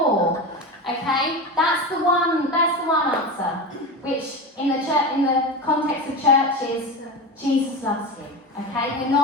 Okay? That's the one answer. Which in the context of church is Jesus loves you. Okay? We're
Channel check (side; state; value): both; normal; correlation 0.23